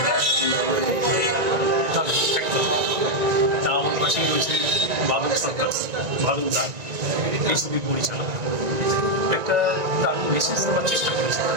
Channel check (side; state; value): left; late; 1.9 ms